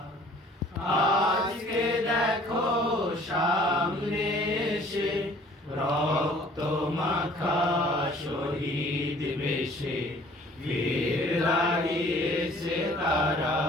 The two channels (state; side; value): normal; both; correlation 0.53